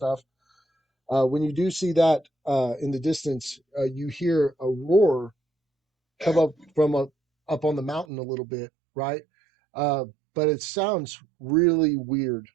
When you do see that in the distance, you hear a roar come up from up on the mountain a little bit, right? Uh, but it sounds really weird.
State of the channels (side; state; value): left; drops out; at 8.1 s